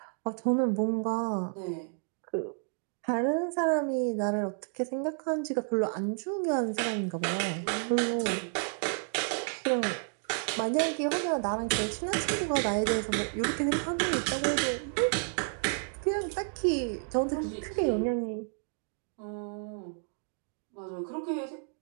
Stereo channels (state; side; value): silent; left; 57 dB below the other